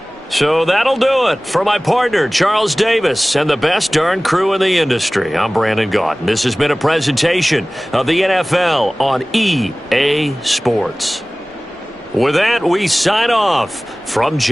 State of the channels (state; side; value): normal; both; correlation 0.98